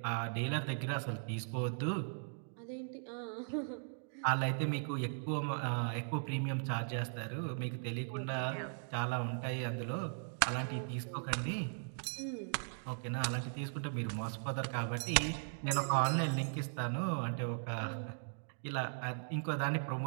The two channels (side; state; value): left; silent; digital silence